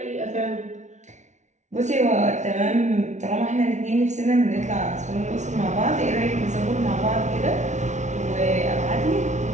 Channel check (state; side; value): late; left; 0.34 ms